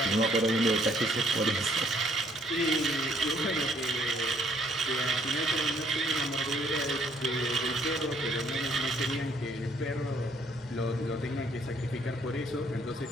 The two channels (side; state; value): both; normal; correlation 0.65